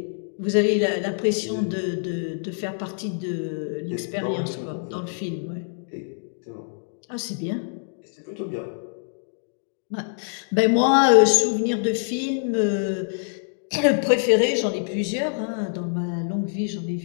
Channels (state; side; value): silent; right; digital silence